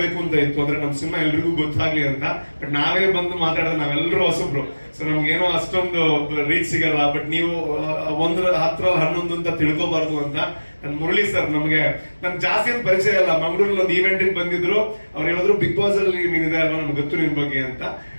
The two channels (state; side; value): inverted; both; correlation -1.00